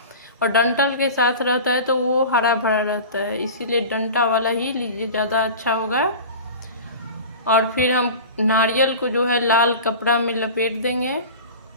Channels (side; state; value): both; inverted; correlation -0.35